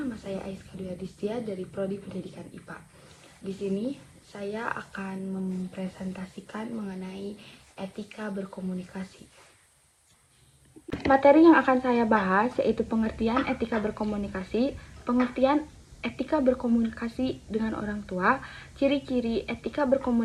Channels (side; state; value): both; identical; correlation 1.00